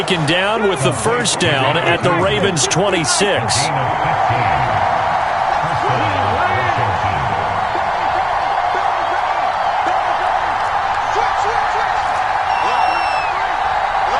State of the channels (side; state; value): both; identical; correlation 1.00